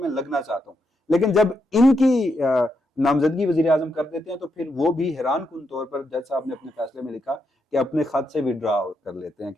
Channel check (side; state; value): both; normal; correlation 0.81